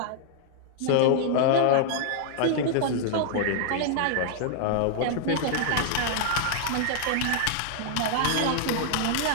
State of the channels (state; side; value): different; both; correlation -0.01